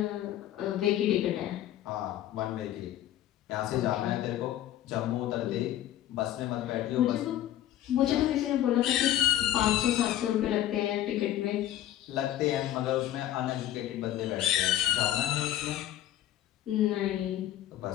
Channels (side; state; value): right; quieter; 12.8 dB